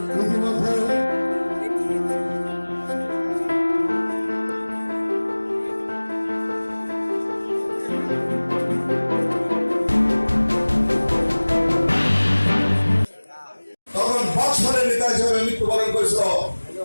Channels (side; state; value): both; inverted; correlation -1.00